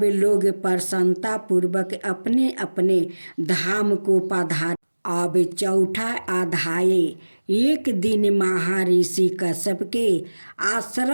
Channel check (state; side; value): inverted; both; correlation -1.00